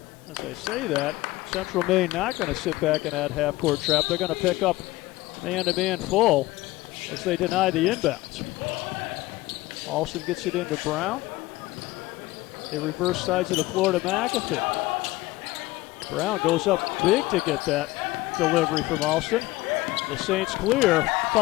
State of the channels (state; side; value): quieter; right; 18.9 dB